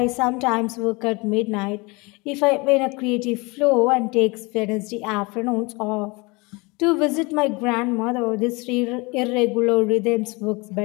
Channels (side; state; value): right; quieter; 26.4 dB